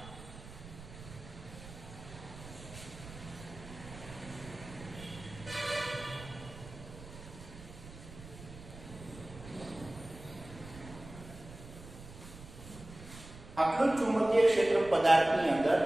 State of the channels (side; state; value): right; noise; rumble, 15 dB below the sound